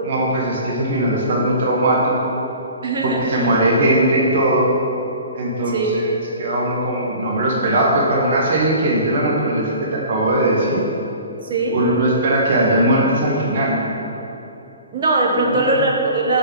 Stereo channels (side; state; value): both; inverted; correlation -0.44